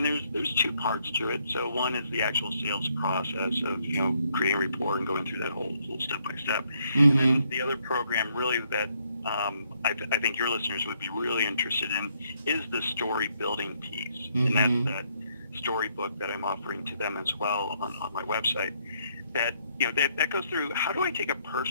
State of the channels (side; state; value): both; inverted; correlation -0.72